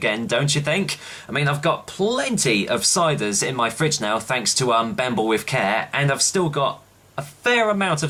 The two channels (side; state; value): both; identical; correlation 1.00